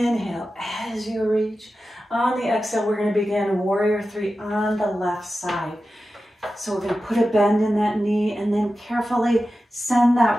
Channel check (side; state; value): both; normal; correlation 0.93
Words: as you reach. On the exhale, we're going to begin warrior three on the left side. So we're going to put a bend in that knee and then carefully send